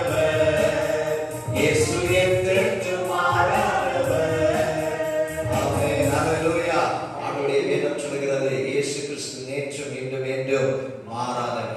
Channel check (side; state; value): both; identical; correlation 1.00